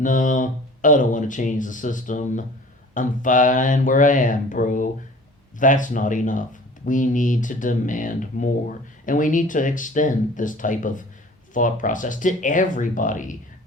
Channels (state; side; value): normal; both; correlation 0.46